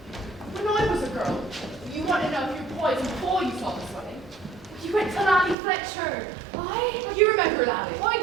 When I was a girl, you want to know if you're poisoned before you saw the swelling. You went to Lally Fletcher. Oh, you remember Lally? I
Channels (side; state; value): left; drops out; at 5.6 s